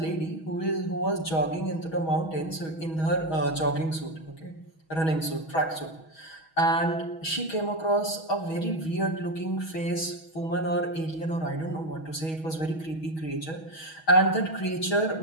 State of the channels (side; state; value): right; late; 6.2 ms